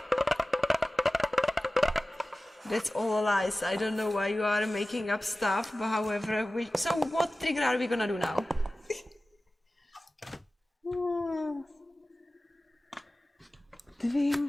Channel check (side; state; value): both; normal; correlation 0.96